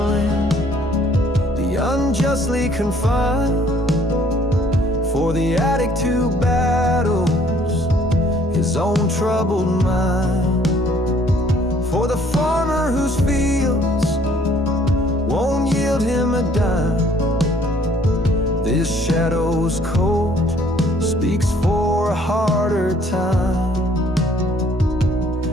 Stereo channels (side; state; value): both; normal; correlation 0.60